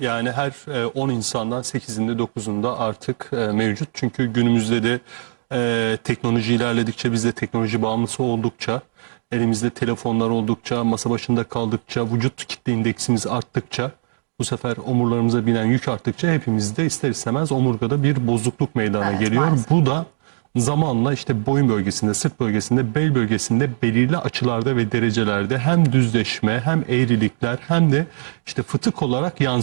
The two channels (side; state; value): left; silent; digital silence